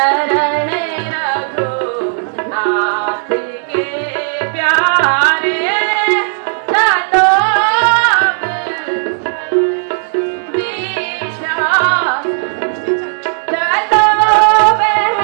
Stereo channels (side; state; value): left; silent; digital silence